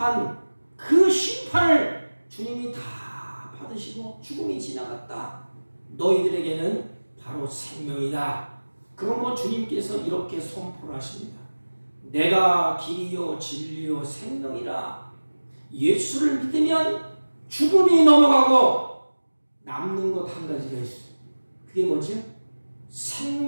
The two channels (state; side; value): inverted; both; correlation -1.00